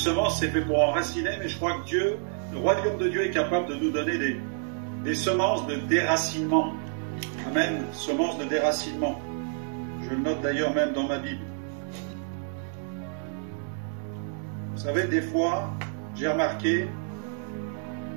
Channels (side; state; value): left; silent; digital silence